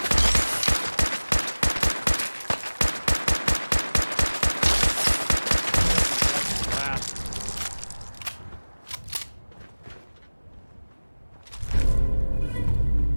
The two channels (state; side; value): inverted; both; correlation -1.00